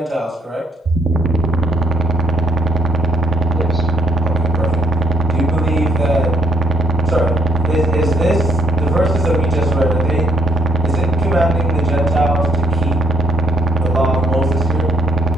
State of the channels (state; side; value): normal; both; correlation 0.70